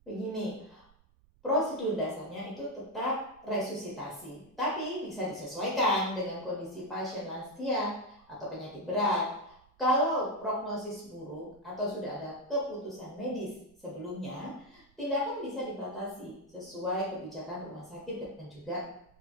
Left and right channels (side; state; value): right; noise; rumble, 30 dB below the sound